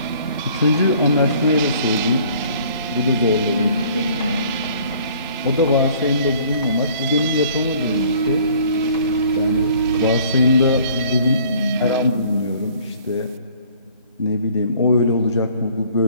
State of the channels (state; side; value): inverted; both; correlation -0.55